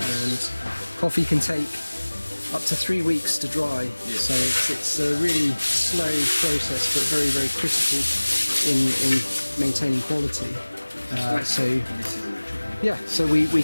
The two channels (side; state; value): both; inverted; correlation -1.00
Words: and coffee can take up to 3 weeks to dry. So it's a really slow process, but very, very critical in maintaining quality. So we